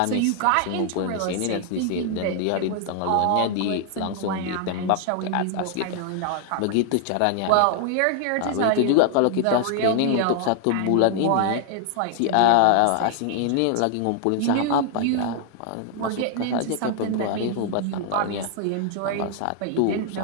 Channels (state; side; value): different; both; correlation 0.00